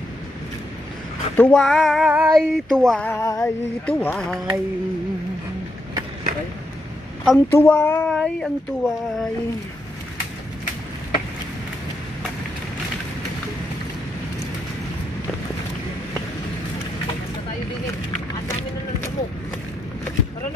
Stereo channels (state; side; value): normal; both; correlation 0.81